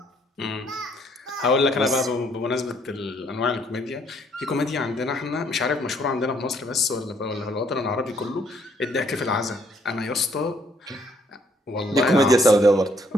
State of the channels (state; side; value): normal; both; correlation 0.67